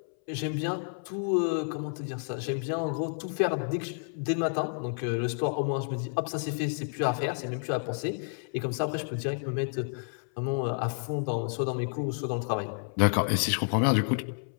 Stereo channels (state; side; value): silent; right; 58 dB below the other